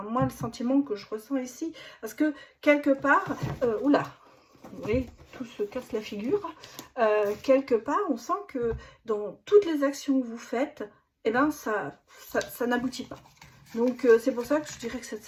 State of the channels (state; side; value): identical; both; correlation 1.00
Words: moi le sentiment que je ressens ici, parce que quelque part, oula, vous voyez, tout se casse la figure. Quelque part, on sent que dans toutes les actions que vous faites, eh ben, ça n'aboutit pas. Donc, c'est pour ça que je dirais que cette